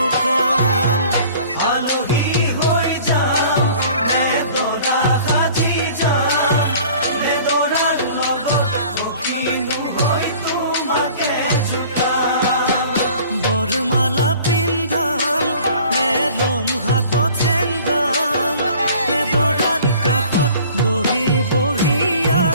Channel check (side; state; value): both; inverted; correlation -0.48